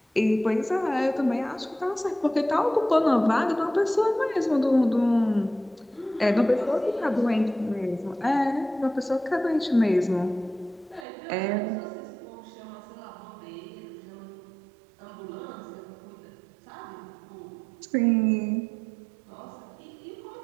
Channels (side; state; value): left; drops out; at 11.1 s